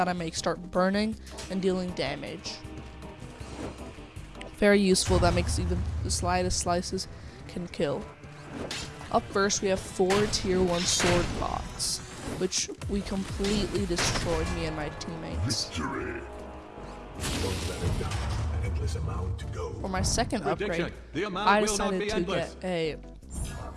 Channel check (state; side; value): identical; both; correlation 1.00